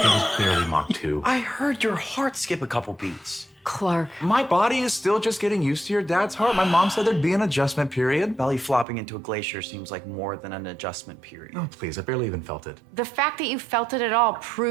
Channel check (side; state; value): left; drops out; at 8.8 s